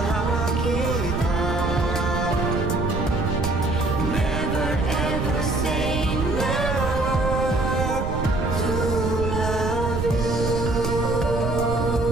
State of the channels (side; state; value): right; noise; rumble, 3 dB below the sound